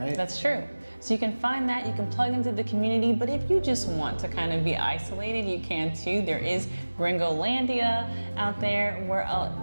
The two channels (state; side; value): inverted; both; correlation -1.00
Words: That's true. So you can find that, you can plug into the community, but if you just want to kind of be isolated, you can too. There is Gringolandia out there where